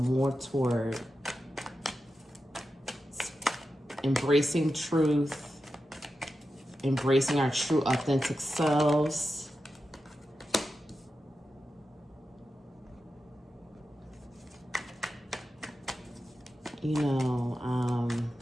toward embracing truth, embracing our true authentic selves,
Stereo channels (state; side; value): normal; both; correlation 0.91